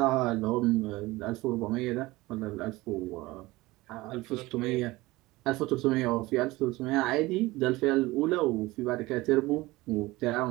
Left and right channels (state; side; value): quieter; left; 20.1 dB